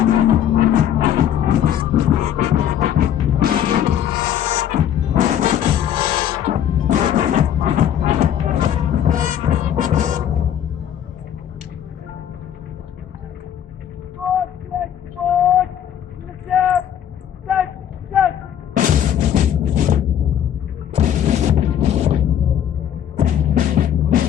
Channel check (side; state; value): right; quieter; 10.0 dB